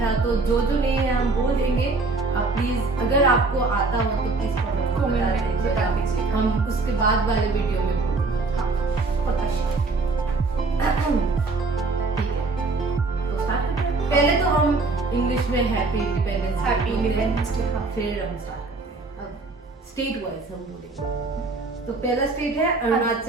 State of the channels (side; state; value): left; quieter; 3.7 dB